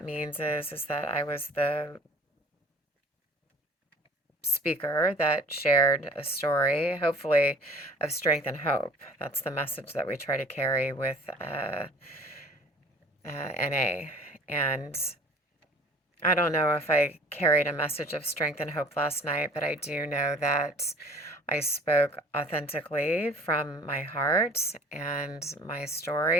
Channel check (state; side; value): normal; both; correlation 0.48